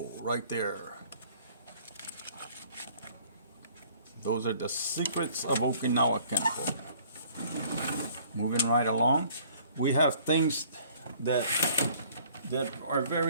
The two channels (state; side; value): inverted; both; correlation -0.55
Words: right there. Those are the secrets of Okinawa Kenpo. Moving right along, we have things that are